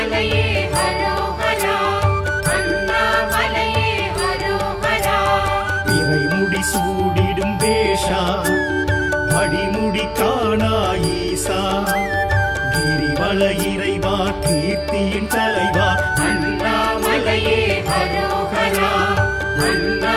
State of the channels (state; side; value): identical; both; correlation 1.00